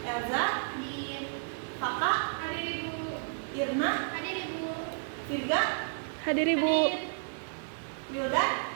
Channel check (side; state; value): left; silent; digital silence